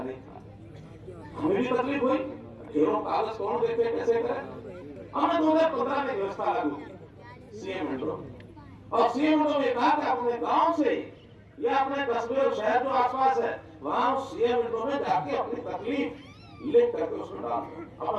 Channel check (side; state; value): both; identical; correlation 1.00